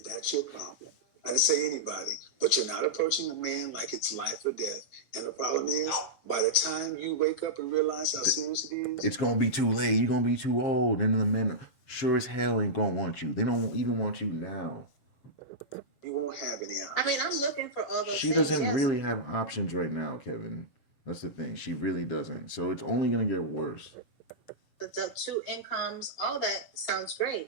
that's your problem. I didn't say anybody, but you're not approaching a man like it's life or death. And the problem is, by the time you wake up and realize how serious it is, It's going to be too late. You're going to be too old. And the men sure as hell ain't going to want you. They don't even want you now. you won't have any options. I mean, I'm looking for all those She things. doesn't yes. really have options right now, Kevin. That's the thing. She really doesn't. So it's only going to get worse. The two incomes, all that sounds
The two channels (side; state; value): right; late; 7.4 ms